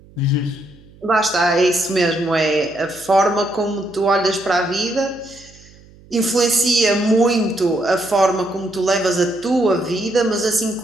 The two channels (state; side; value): noise; right; hum, 25 dB below the sound